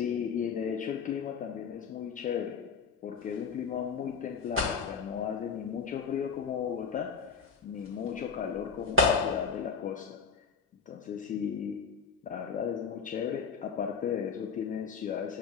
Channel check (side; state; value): right; quieter; 6.0 dB